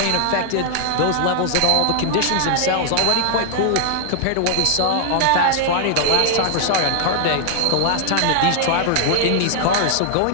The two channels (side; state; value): both; different; correlation 0.00